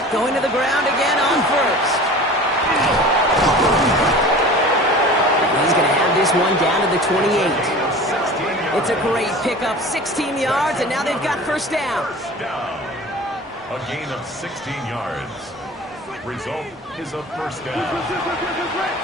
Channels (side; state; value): both; normal; correlation 0.39